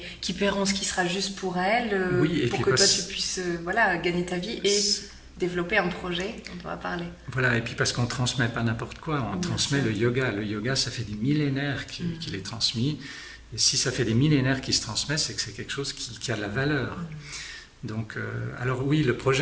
qui paieront ce qui sera juste pour elles, pour que toi tu puisses gagner ta vie et développer un projet dont on va parler. Voilà, et puis parce qu'on ne transmet pas n'importe quoi, on transmet le yoga. Le yoga, ça fait des millénaires qu'il est transmis. Et si ça fait des millénaires qu'il se transmet, c'est que c'est quelque chose qui a de la valeur. Donc, alors oui, le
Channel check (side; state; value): both; identical; correlation 1.00